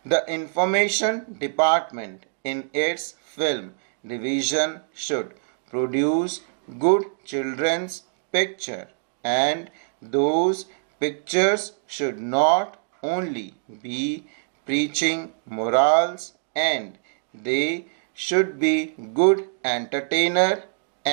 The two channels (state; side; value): silent; left; digital silence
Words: The information department in its film division should produce good children's picture, and those pictures should not only be preaching morals, and they should be good entertainer,